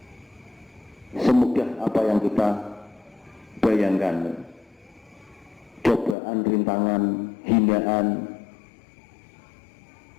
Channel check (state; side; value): drops out; right; at 6.2 s